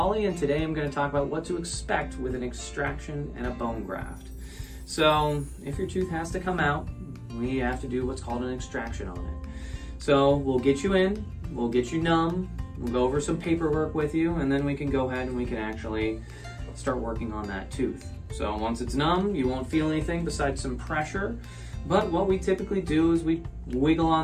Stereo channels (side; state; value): both; identical; correlation 1.00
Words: and today I'm going to talk about what to expect with an extraction and a bone graft. So, if your tooth has to come out, we have to do what's called an extraction on it. So, we'll get you in, we'll get you numb, we'll go over some paperwork with you, and then we can go ahead and we can actually start working on that tooth. So, once it's numb, you won't feel anything besides some pressure, but what we typically do is we wiggle